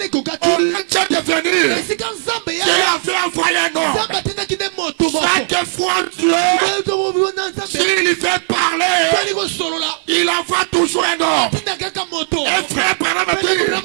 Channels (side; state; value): left; silent; 68 dB below the other